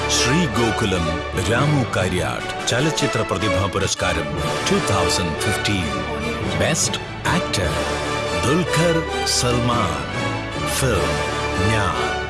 ശ്രീ ഗോകുലം രാമു കാര്യാട്ട് ചലച്ചിത്ര പ്രതിഭാ പുരസ്കാരം 2015. Best actor Dulquer Salman. Film ഞാൻ.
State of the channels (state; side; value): identical; both; correlation 1.00